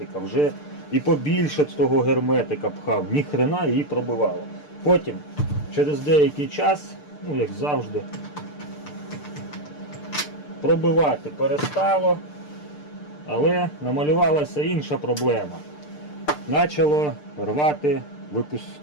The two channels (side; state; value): right; late; 6.7 ms